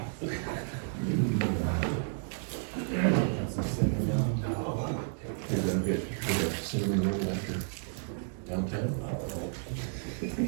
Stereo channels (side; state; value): left; silent; digital silence